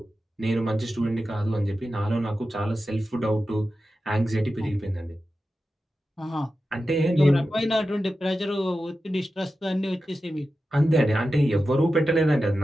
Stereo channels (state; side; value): normal; both; correlation 0.92